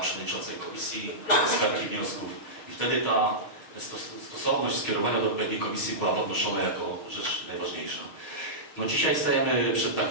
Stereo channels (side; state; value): right; late; 6.3 ms